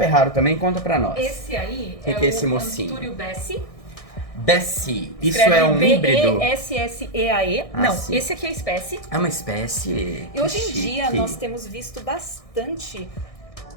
raro também, conta pra nós. Esse aí Que é que é esse o mocinho? Antúrio Bessie. Bessie. Isso Escreve é um híbrido? B-E-S-S-E-A-E. Ah, Não, sim. esse aqui é a espécie. É uma espécie. E hoje em Que dia chique. nós temos visto bastante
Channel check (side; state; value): right; late; 1.6 ms